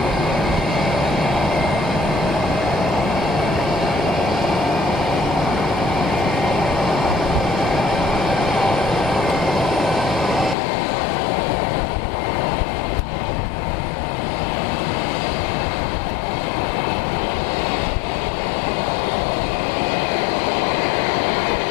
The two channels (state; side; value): drops out; right; at 10.6 s